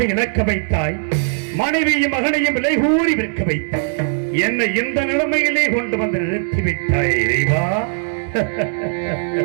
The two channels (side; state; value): left; silent; digital silence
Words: இழக்க வைத்தாய், மனைவியும் மகனையும் விலை கூறி விற்க வைத்தாய், என்னை இந்த நிலைமையிலே கொண்டு வந்து நிறுத்திவிட்டாய் இறைவா.